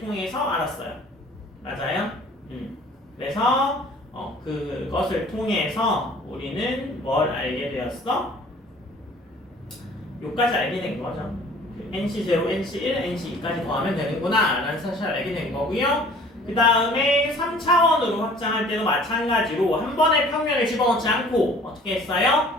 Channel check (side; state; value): both; normal; correlation 0.51